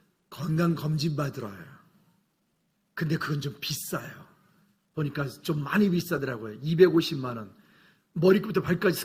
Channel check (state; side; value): identical; both; correlation 1.00